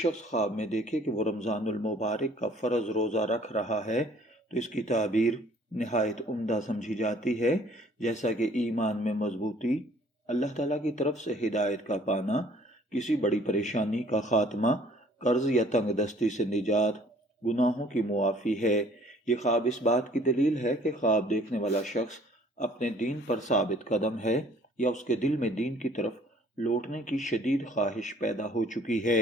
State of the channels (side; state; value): both; normal; correlation 0.56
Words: خواب میں دیکھے کہ وہ رمضان المبارک کا فرض روزہ رکھ رہا ہے تو اس کی تعبیر نہایت عمدہ سمجھی جاتی ہے، جیسا کہ ایمان میں مضبوطی، اللہ تعالیٰ کی طرف سے ہدایت کا پانا، کسی بڑی پریشانی کا خاتمہ، قرض یا تنگ دستی سے نجات، گناہوں کی معافی ہے۔ یہ خواب اس بات کی دلیل ہے کہ خواب دیکھنے والا شخص اپنے دین پر ثابت قدم ہے یا اس کے دل میں دین کی طرف لوٹنے کی شدید خواہش پیدا ہو چکی